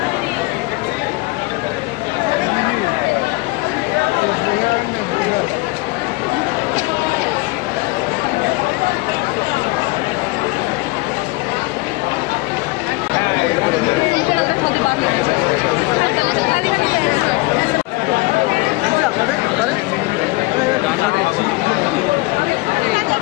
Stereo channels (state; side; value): quieter; right; 22.9 dB